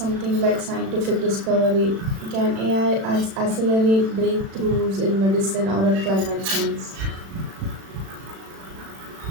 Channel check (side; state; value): left; late; 36 ms